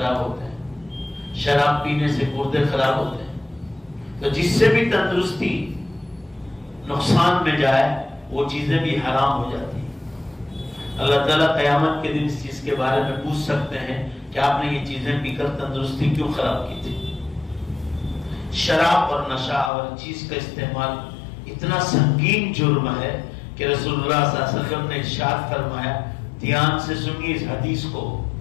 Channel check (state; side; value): drops out; right; at 19.7 s